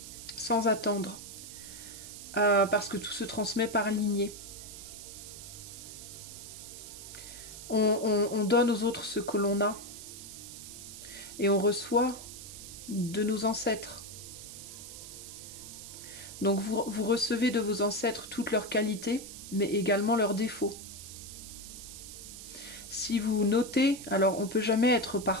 Sans attendre. Parce que tout se transmet par lignée. On donne aux autres ce que l'on a. Et on reçoit de nos ancêtres. Donc vous recevez de vos ancêtres toutes leurs qualités, mais également leurs défauts. Si vous notez, alors on ne peut jamais être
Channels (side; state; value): right; noise; hiss, 12 dB below the sound